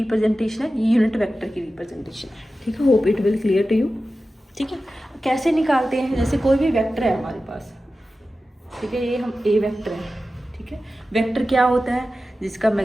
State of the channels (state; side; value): normal; both; correlation 0.94